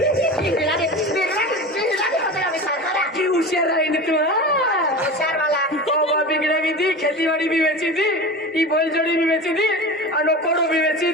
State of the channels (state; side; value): normal; both; correlation 0.30